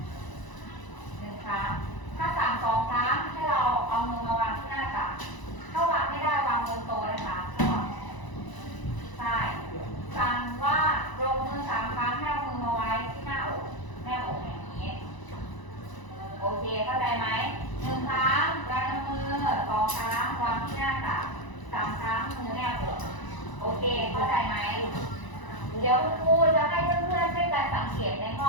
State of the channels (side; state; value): right; late; 1.0 ms